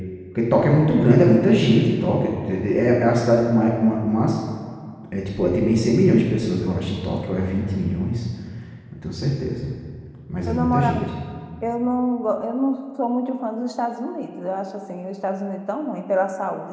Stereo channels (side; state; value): both; identical; correlation 1.00